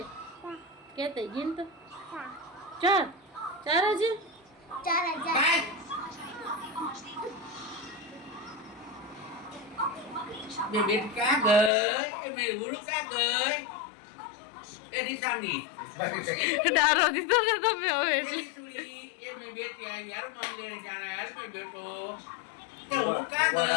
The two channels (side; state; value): right; drops out; at 11.7 s